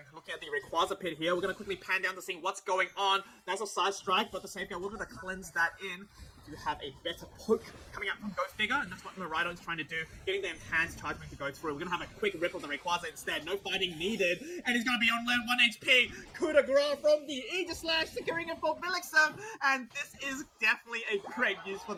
looking at the Rayquaza pit here. We're going to quickly pan down to see what's going on. That's a side strike, but the Safeguard, we're going to cleanse that in to have a better poke coming out from Go Figure, and that's what Miraidon is trying to do, getting the enhanced charge to go through. We're going to have a quick rip of the Rayquaza instead. No fighting needed, and he's going to be on 1 HP. Coup de grace from the Aegislash, securing it for Vilixen, and this is definitely a great use for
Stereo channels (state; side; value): identical; both; correlation 1.00